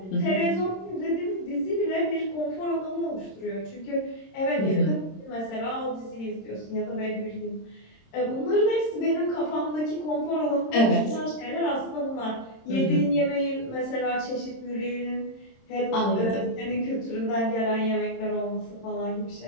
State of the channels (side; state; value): right; late; 26 ms